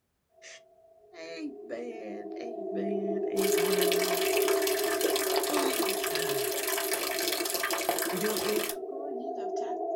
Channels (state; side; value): identical; both; correlation 1.00